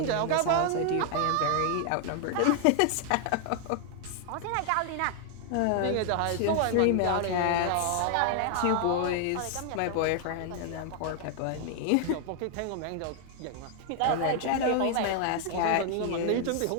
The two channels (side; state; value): both; different; correlation 0.00